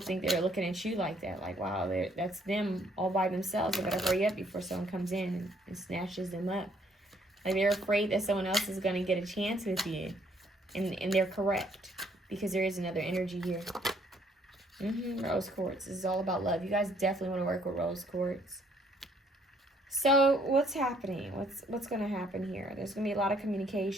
they're looking at you like that. Like, wow, that's them all by themselves. They better hurry up before someone comes in and snatches them up. Like, they're afraid that someone else is going to get a chance with you. And they're correct. Because there is another energy here. Rose quartz. This is all about love. You guys definitely want to work with rose quartz. So, what's happening? What's going to happen here? There's going to be a lot of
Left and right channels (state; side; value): normal; both; correlation 0.66